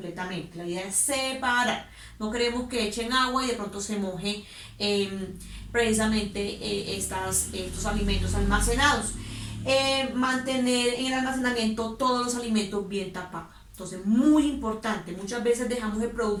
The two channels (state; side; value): identical; both; correlation 1.00